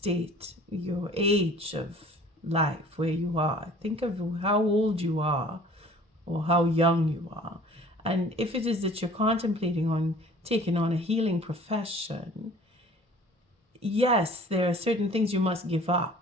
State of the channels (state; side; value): normal; both; correlation 0.49